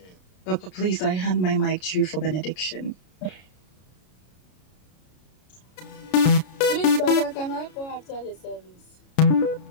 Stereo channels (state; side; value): late; right; 33 ms